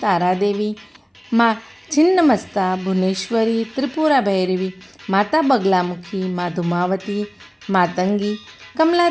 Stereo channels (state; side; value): identical; both; correlation 1.00